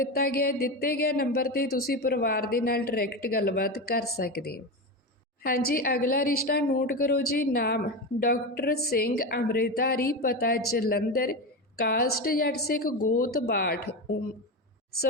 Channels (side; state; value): both; normal; correlation 0.19